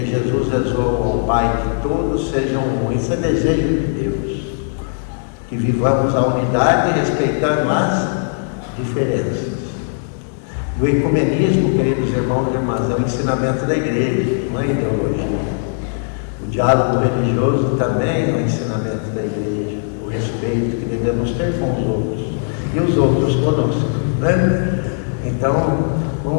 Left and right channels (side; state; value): right; silent; digital silence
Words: Jesus rezou ao Pai que todos sejam um. Isso é desejo de Deus. Que vivamos a unidade respeitando as diferenças. E o ecumenismo, queridos irmãos e irmãs, é o ensinamento da igreja, não é ideologia. O diálogo religioso também é o ensinamento da igreja, o respeito que devemos ter com os outros e os outros conosco, né? Então,